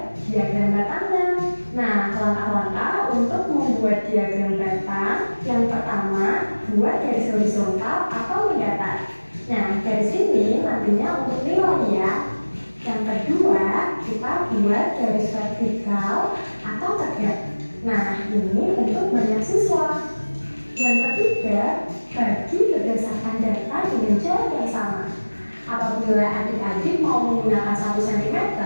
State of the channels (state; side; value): inverted; both; correlation -1.00